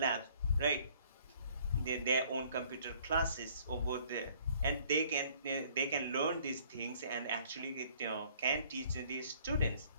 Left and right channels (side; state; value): both; inverted; correlation -0.58